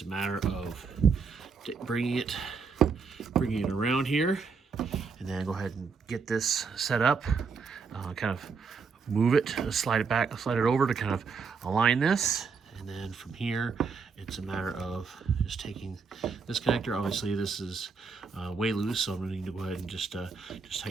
a matter of bringing it around here, and then go ahead and get this set up. Kind of move it, slide it back, slide it over to kind of align this, and then from here it's a matter of just taking this connector. Obviously this is way loose, so I'm going to need to go ahead and just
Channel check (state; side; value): quieter; left; 5.3 dB